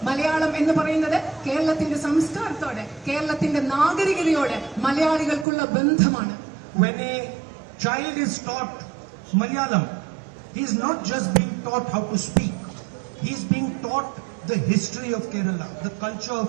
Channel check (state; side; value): drops out; left; at 5.5 s